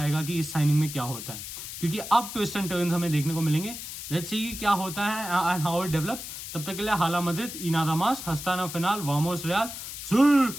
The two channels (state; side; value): noise; left; hiss, 9 dB below the sound